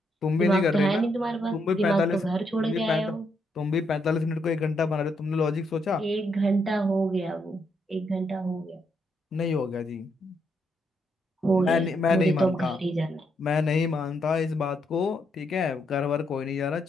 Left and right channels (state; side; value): normal; both; correlation 0.77